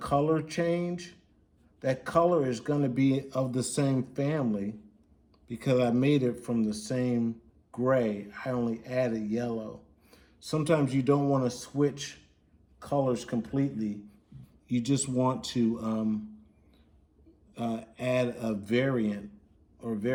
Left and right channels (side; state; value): both; identical; correlation 1.00